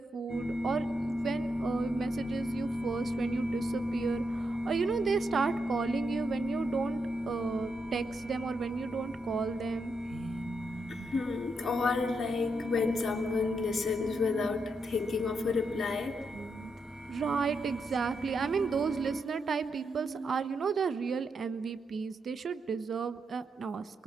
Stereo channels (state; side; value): normal; both; correlation 0.82